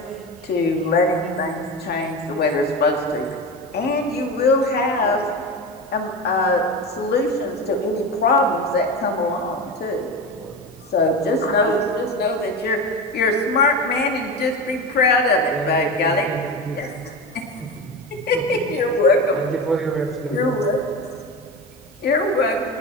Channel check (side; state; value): both; normal; correlation 0.23